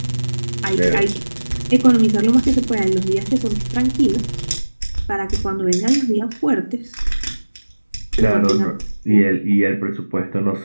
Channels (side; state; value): both; inverted; correlation -1.00